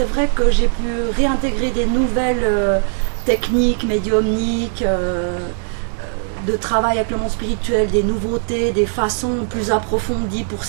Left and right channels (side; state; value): left; silent; 67 dB below the other